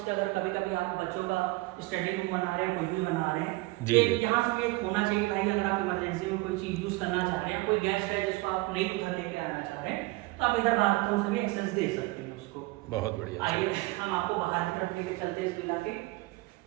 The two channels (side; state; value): left; quieter; 21.6 dB